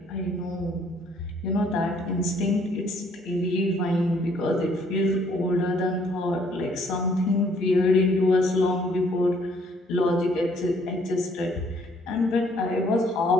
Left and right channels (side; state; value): both; normal; correlation 0.64